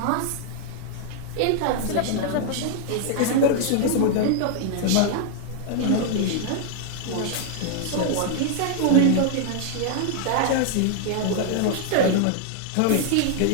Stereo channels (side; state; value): both; different; correlation 0.00